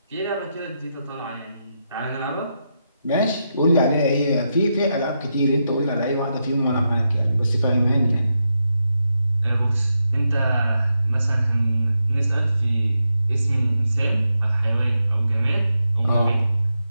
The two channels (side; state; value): both; inverted; correlation -0.84